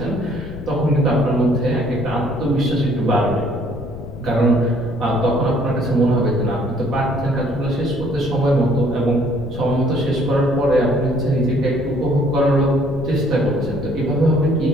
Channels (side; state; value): left; noise; rumble, 12 dB below the sound